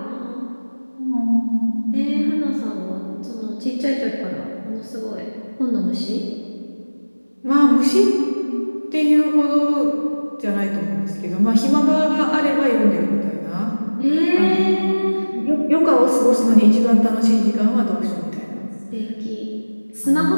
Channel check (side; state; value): both; inverted; correlation -1.00